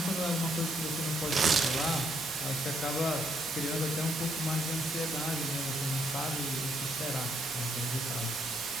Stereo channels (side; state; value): both; normal; correlation 0.72